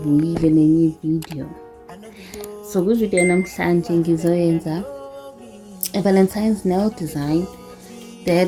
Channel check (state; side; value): identical; both; correlation 1.00